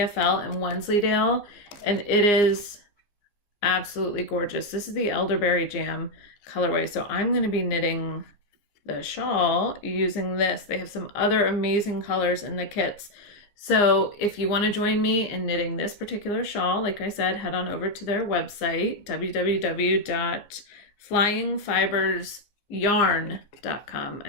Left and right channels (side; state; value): right; late; 15 ms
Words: and Wensleydale, and it is absolutely gorgeous. This is the Elderberry Jam colorway. So I'm going to be knitting the shawl using this. They have some other amazing colors in the kits. So if you want to join me in knitting this particular shawl, like I said, head on over to their website, www.flyingfibresyarn.com. I